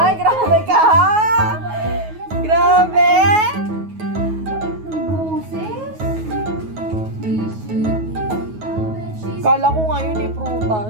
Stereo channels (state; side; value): late; left; 9.4 ms